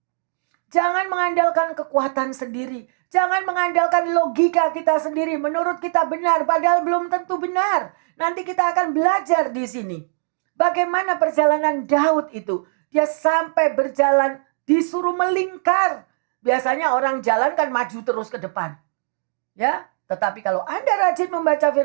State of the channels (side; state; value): left; silent; digital silence